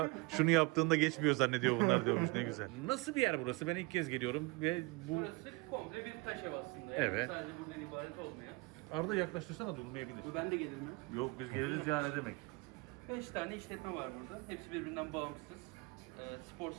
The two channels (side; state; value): left; quieter; 26.6 dB